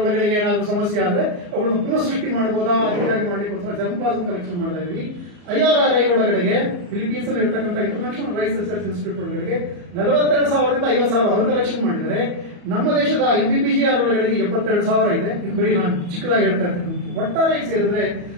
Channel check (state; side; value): late; left; 34 ms